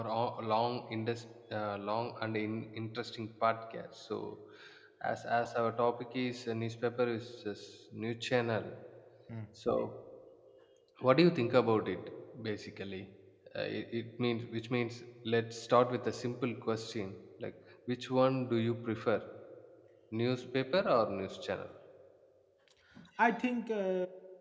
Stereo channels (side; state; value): both; identical; correlation 1.00